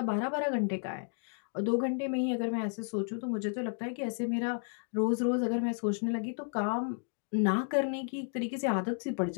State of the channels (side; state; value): right; silent; 56 dB below the other